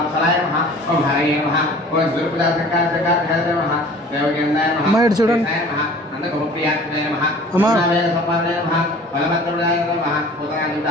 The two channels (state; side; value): normal; both; correlation 0.46